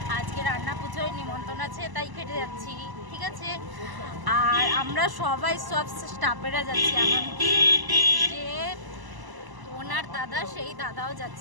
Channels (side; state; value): left; late; 1.0 ms